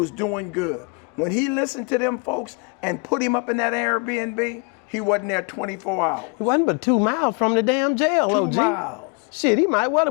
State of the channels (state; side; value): quieter; right; 32.9 dB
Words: doing good. When he listened to them folks and put him up in that Airbnb, he wasn't there 24 hours. He wasn't but 2 miles from the damn jail, 2 OG. miles. Shit, he might well